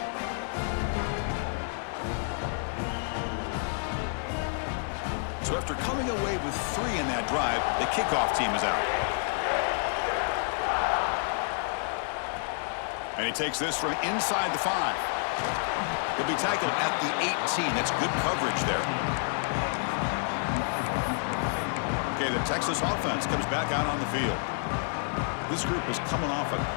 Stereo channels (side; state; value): right; silent; 58 dB below the other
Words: So after coming away with 3 in that drive, the kickoff team is out. And he takes this from inside the 5. He'll be tackled at the 18. That's good coverage there. Okay, the Texas offense comes back out on the field. This group is coming off a